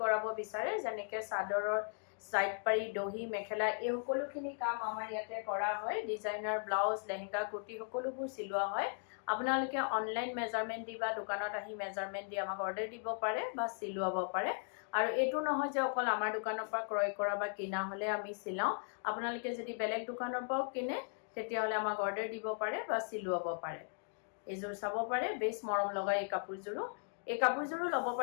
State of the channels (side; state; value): right; silent; 53 dB below the other